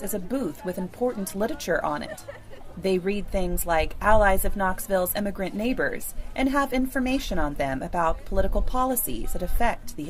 is a booth with important literature on it. They read things like Allies of Knoxville's Immigrant Neighbors and have information on them about political policies that affect the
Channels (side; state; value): both; identical; correlation 1.00